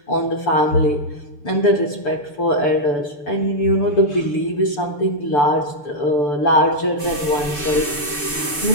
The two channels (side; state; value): right; late; 6.9 ms